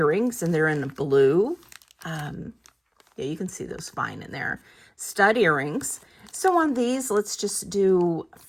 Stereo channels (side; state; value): both; identical; correlation 1.00